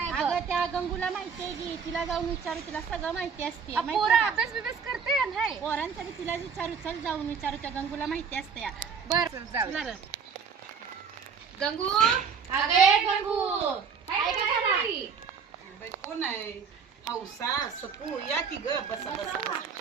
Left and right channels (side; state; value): left; quieter; 6.2 dB